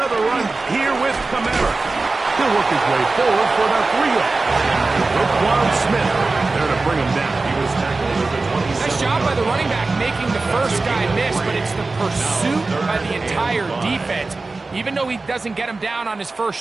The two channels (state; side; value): quieter; left; 3.6 dB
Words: run here with Kamara. He'll work his way forward for about 3 yards. Roquan Smith there to bring him down. He was tackled at the 27. Nice job by the running back making the first guy miss, but it's the pursuit by the entire defense. Even though he doesn't get him down on his